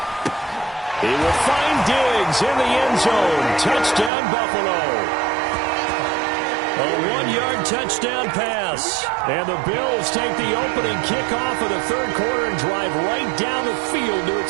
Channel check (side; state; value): left; drops out; at 4.1 s